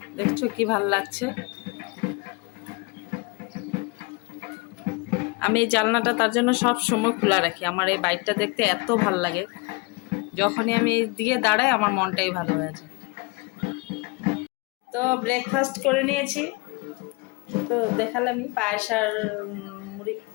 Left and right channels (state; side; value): quieter; right; 27.1 dB